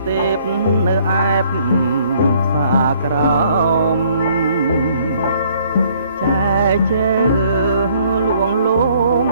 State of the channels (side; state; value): both; inverted; correlation -0.62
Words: ទេពនៅអែបសាក្រោមចែជើលួងលោម